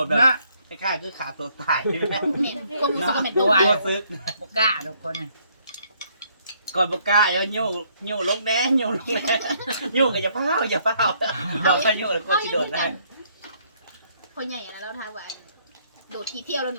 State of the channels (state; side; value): inverted; both; correlation -0.67